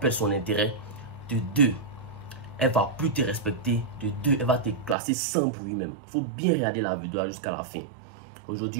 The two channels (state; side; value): drops out; left; at 5.0 s